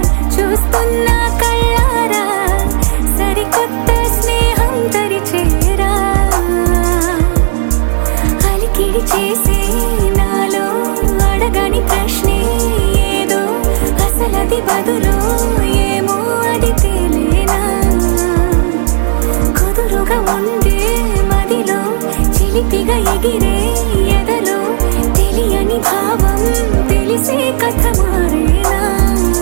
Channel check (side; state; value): left; silent; digital silence